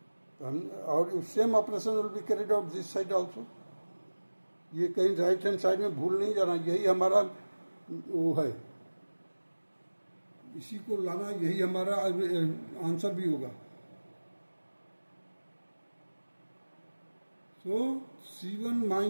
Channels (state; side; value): inverted; both; correlation -1.00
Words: तो हम, और same operation will be carried out this side also. ये कहीं राइट हैंड साइड में भूल नहीं जाना, यही हमारा वो है, इसी को लाना, यही हमारा आंसर भी होगा। सो C1